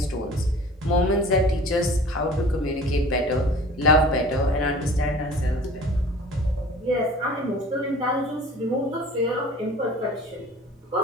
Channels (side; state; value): both; normal; correlation 0.45